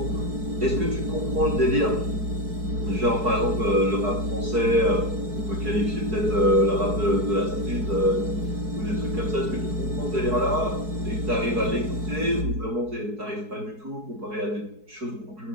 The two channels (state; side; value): late; left; 4.7 ms